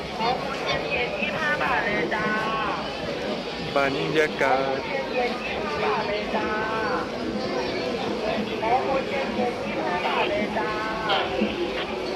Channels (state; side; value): identical; both; correlation 1.00